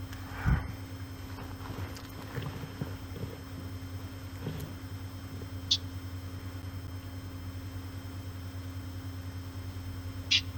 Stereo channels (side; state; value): both; identical; correlation 1.00